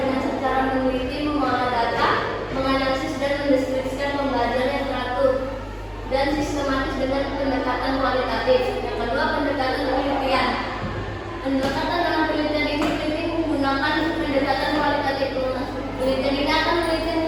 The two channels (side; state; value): both; identical; correlation 1.00